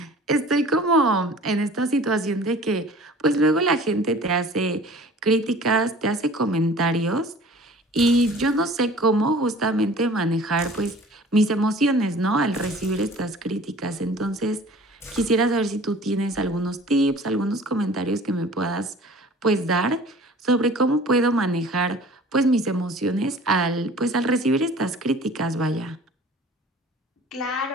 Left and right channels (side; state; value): both; normal; correlation 0.46